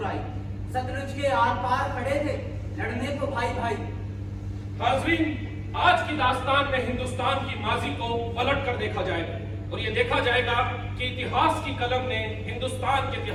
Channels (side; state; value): both; identical; correlation 1.00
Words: सतलुज के आर पार खड़े थे, लड़ने को भाई भाई। हाजरीन, आज की दास्तान में हिंदुस्तान की माजी को पलट कर देखा जाएगा और ये देखा जाएगा कि इतिहास की कलम ने हिंदुस्तान के